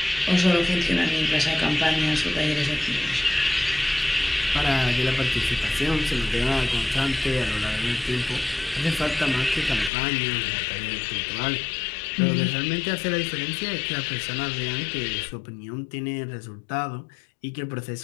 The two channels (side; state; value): right; drops out; at 9.9 s